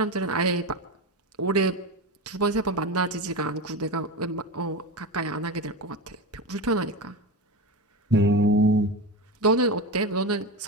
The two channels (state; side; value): normal; both; correlation 0.21